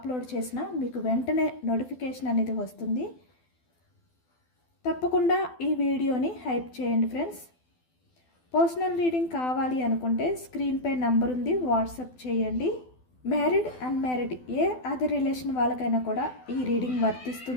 చేసినా మీకు వెంటనే నోటిఫికేషన్ అనేది వస్తుంది. తప్పకుండా ఈ వీడియోని హైప్ చేయండి ఫ్రెండ్స్. పర్సనల్ రీడింగ్ కావాలి అనుకుంటే స్క్రీన్పై నంబర్ ఉంది, వాట్సాప్ చేయండి. మ్యారీడ్ అన్మ్యారీడ్ ఏ అదర్ రిలేషన్ వాళ్ళకైనా కూడా ఈ రీడింగ్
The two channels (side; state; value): right; late; 12 ms